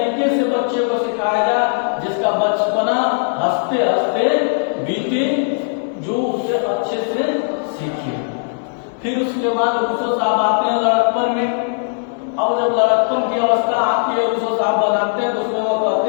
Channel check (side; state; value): right; silent; digital silence